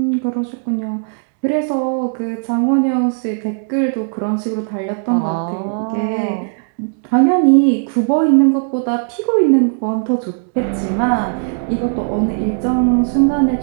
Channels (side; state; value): left; silent; 66 dB below the other